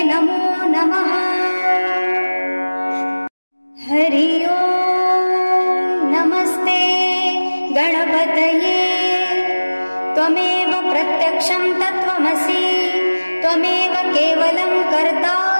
नमो नमः। हरि ओम् नमस्ते गणपतये त्वमेव प्रत्यक्षं तत्त्वमसि त्वमेव केवलं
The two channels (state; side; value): inverted; both; correlation -1.00